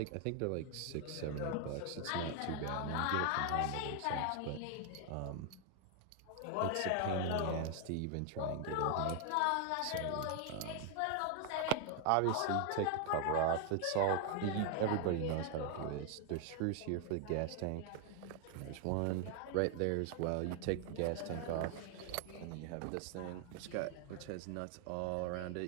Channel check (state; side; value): different; both; correlation 0.00